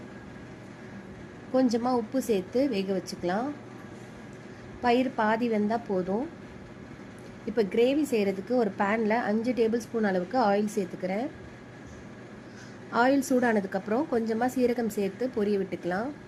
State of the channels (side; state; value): both; identical; correlation 1.00